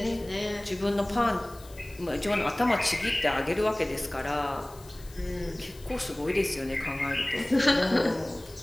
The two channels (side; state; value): left; noise; hiss, 22 dB below the sound